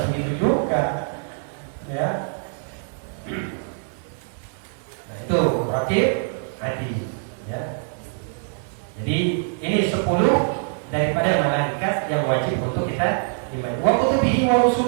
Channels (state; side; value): silent; left; digital silence